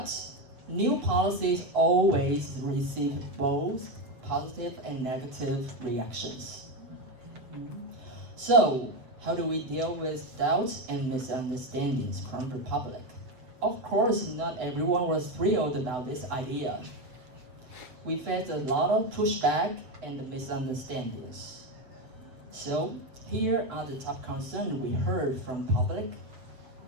new policies always receive both positive and negative reactions. So, how do we deal with doubts and misunderstandings from the public? Of course, not everyone was thrilled about this idea. We faced a lot of pushback and misunderstandings. So, here are the top concerns we heard from public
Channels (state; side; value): late; left; 7.4 ms